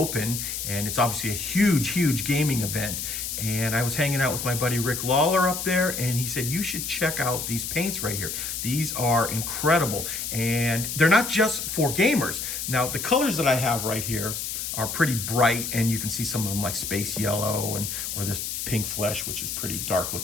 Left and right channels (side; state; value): left; noise; hiss, 4 dB below the sound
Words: and it's obviously a huge gaming event. And I was hanging out with my buddy Rick Lawler up there, and he said, you should check out these paints right here. These are incredible, and they're not just for gamers. Now, the colors that I have right here are pretty bright, and you can see some of them like space yellow, and or this pink flesh, which is pretty dark